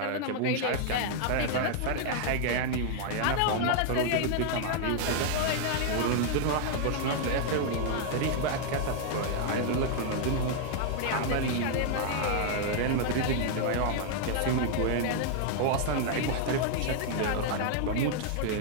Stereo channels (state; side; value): different; both; correlation 0.00